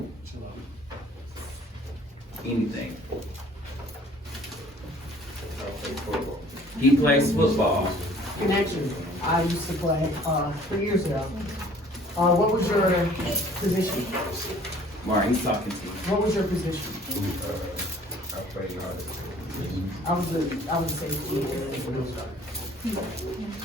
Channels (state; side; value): normal; both; correlation 0.54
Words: Anything. He plays football. Connection. I used to play 3 years ago. What was your position? Mari, he's talking to you. What was your position? I play hard. I was a safety.